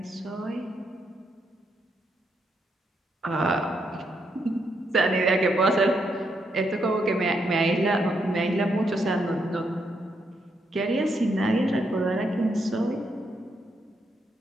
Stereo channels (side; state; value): both; normal; correlation 0.78